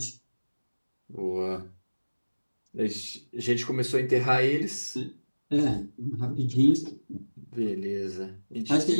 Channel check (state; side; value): inverted; both; correlation -1.00